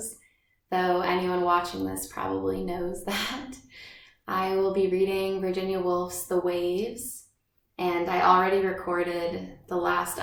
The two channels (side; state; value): both; identical; correlation 1.00